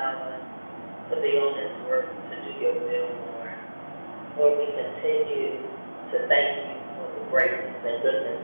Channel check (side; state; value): both; inverted; correlation -1.00